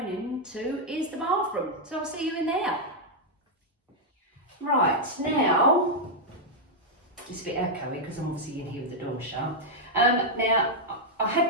into is the bathroom. So I'll see you in there. Right, now, it's a bit echoey because I'm obviously in here with the door shut. Now, I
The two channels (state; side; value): normal; both; correlation -0.03